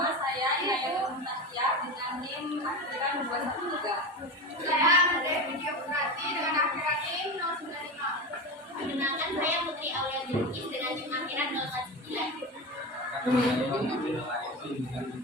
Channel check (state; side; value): normal; both; correlation 0.23